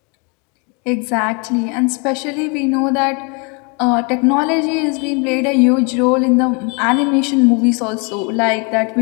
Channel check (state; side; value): quieter; right; 33.5 dB